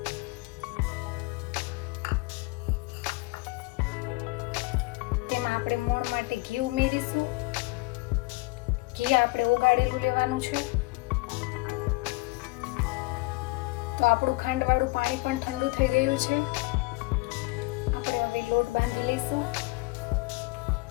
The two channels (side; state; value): right; quieter; 23.2 dB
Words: તેમાં આપણે મોણ માટે ઘી ઉમેરીશું. ઘી આપણે ઓગાળેલું લેવાનું છે. તો આપણું ખાંડવાળું પાણી પણ ઠંડુ થઈ ગયું છે. આપણે હવે લોટ બાંધી લઈશું.